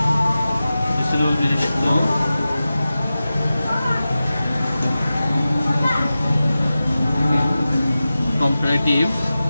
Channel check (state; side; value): inverted; both; correlation -0.94